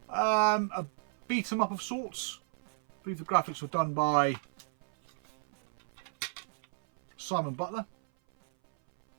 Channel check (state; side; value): silent; left; 56 dB below the other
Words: A beat 'em up of sorts. I believe the graphics were done by Simon Butler.